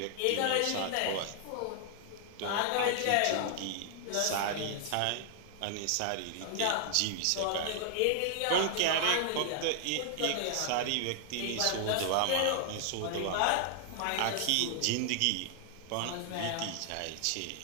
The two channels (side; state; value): both; different; correlation 0.00